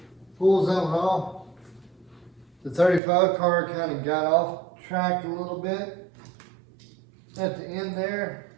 pulls that one off. The 35 car kind of got off track a little bit at the end there.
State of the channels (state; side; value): drops out; left; at 3.0 s